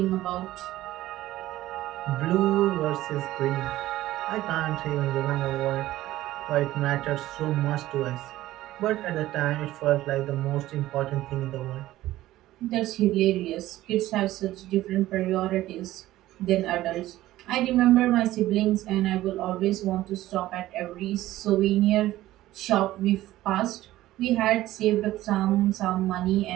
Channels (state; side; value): quieter; left; 15.4 dB